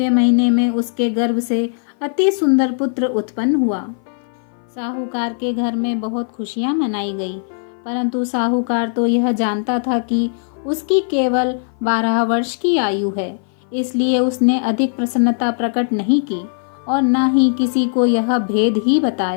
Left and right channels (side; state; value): right; silent; 57 dB below the other